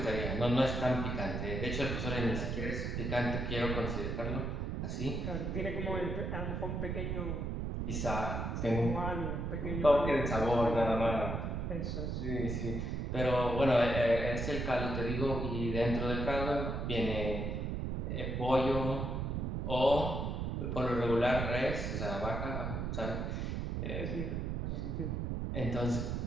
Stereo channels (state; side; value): noise; right; rumble, 2 dB below the sound